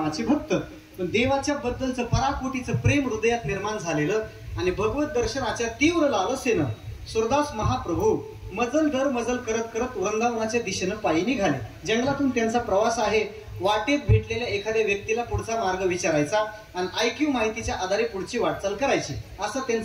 भक्त, पण देवाच्या बद्दलचं पराकोटीचं प्रेम हृदयात निर्माण झालेलं आणि भगवत दर्शनाच्या तीव्र लालसेनं सुरदास महाप्रभू मजल दर मजल करत करत वृंदावनाच्या दिशेनं पायी निघाले. जंगलातून त्यांचा प्रवास आहे. वाटेत भेटलेल्या एखाद्या व्यक्तीला पुढचा मार्ग विचारायचा आणि IQ माहितीच्या आधारे पुढची वाटचाल करायची, असा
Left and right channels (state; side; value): identical; both; correlation 1.00